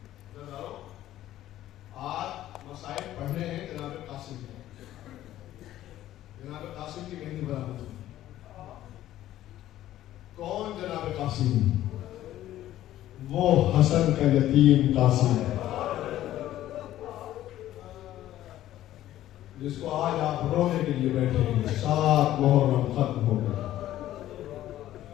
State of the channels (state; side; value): quieter; right; 13.5 dB